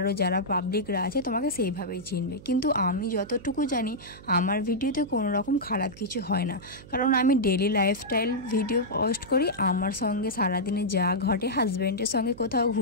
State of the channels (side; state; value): right; noise; hum, 18 dB below the sound